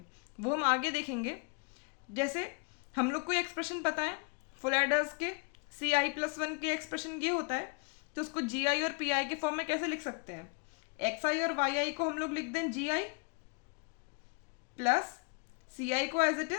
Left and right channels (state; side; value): quieter; right; 32.7 dB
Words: वो हम आगे देखेंगे। जैसे हम लोग को एक्सप्रेशन पता है फुल एडर्स के, CI+1 के एक्सप्रेशन ये होता है, तो उसको GI और PI के फॉर्म में कैसे लिख सकते हैं? XI और YI को हम लोग लिख दें GI प्लस CI को एज इट